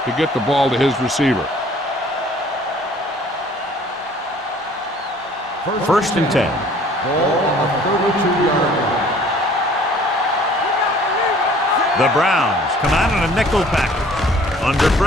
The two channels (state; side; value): normal; both; correlation 0.54